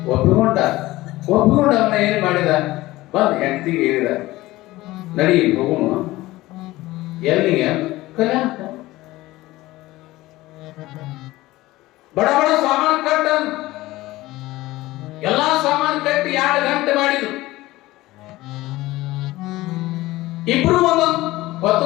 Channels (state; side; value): quieter; right; 18.1 dB